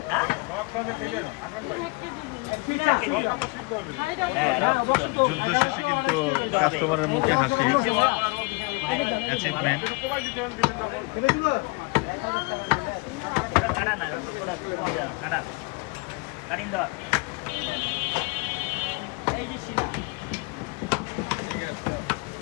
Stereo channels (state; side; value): quieter; right; 28.1 dB